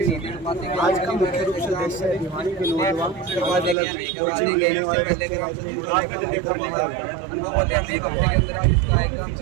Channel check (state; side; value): drops out; left; at 3.8 s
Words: आज का मुख्य रूप से देश से भिवानी के नौजवान